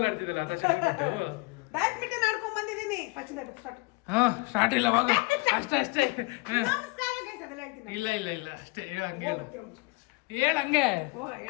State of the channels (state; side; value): quieter; right; 26.9 dB